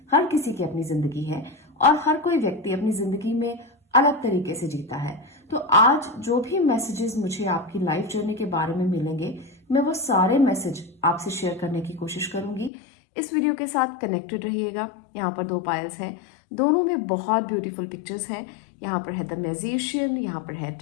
हर किसी की अपनी जिंदगी है और हर कोई व्यक्ति अपनी जिंदगी में अलग तरीके से जीता है। तो आज जो भी मैसेजेस मुझे आपकी लाइफ जर्नी के बारे में मिलेंगे मैं वो सारे मैसेज आपसे शेयर करने की कोशिश करूंगी। इस वीडियो के साथ कनेक्टेड रहिएगा। यहाँ पर 2 पायल्स हैं, दोनों में बहुत ब्यूटीफुल पिक्चर्स हैं। यहाँ पर है द मैजिशियन, यहाँ पर है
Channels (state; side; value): drops out; right; at 12.7 s